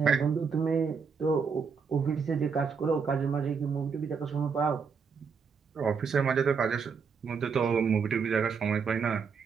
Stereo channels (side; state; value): left; quieter; 5.8 dB